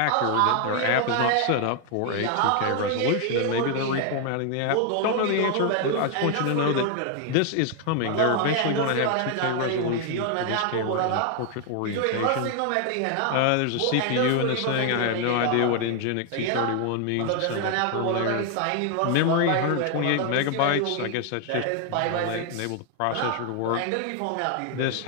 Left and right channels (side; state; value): both; different; correlation 0.00